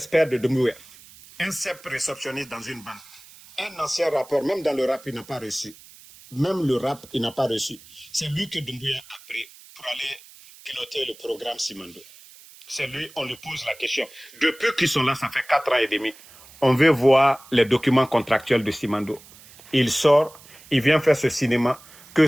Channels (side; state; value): right; noise; hiss, 22 dB below the sound